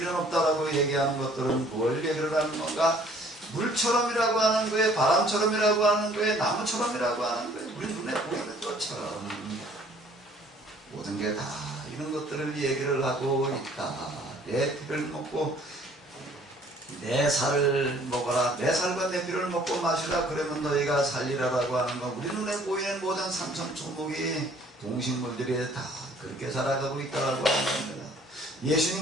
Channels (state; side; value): normal; both; correlation 0.56